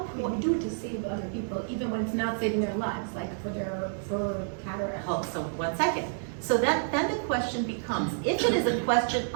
We do it to save other people, even when it's not saving their lives, like for cataract. Oh, so 1 second. So then the question becomes, if it is a question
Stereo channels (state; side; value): silent; left; digital silence